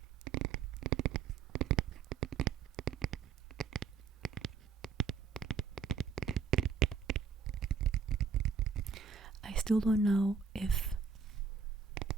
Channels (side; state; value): left; quieter; 5.8 dB